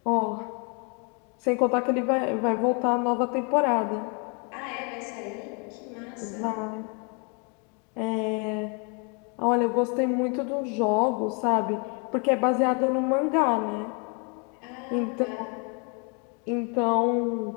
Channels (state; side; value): quieter; right; 35.2 dB